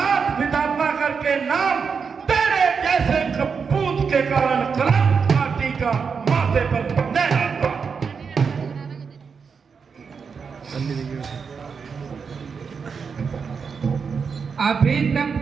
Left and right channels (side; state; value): left; quieter; 5.8 dB